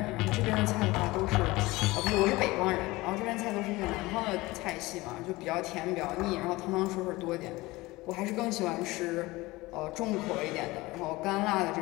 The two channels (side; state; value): right; quieter; 20.6 dB